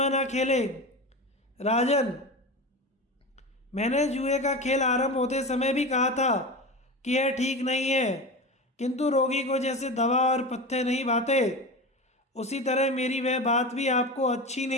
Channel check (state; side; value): normal; both; correlation 0.26